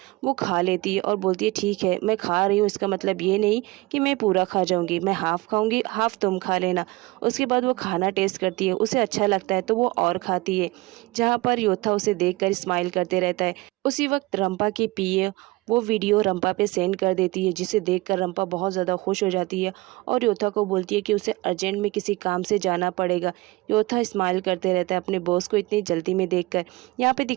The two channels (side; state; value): left; quieter; 22.0 dB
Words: वो खा लेती है और बोलती है ठीक है मैं खा रही हूँ, इसका मतलब ये नहीं कि मैं पूरा खा जाऊँगी, मैं हाफ़ खाऊँगी, हाफ़ तुम खा लेना। उसके बाद वो खाना टेस्ट करती है, उसे अच्छा लगता है तो वो और खाती है। जहाँ पर योथा उसे देखकर स्माइल करते रहता है। उसी वक्त रंपा की पीए वो वीडियो रंपा पे सेंड कर देती है, जिसे देखकर रंपा बहुत ज़्यादा खुश हो जाती है और योथा को बोलती है कि उसे अर्जेंट में किसी काम से जाना पड़ेगा। योथा स्माइल करते रहता है अपने बॉस को इतनी जल्दी में देखकर। यहाँ पे